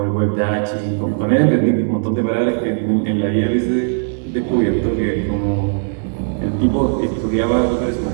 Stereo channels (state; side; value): silent; left; digital silence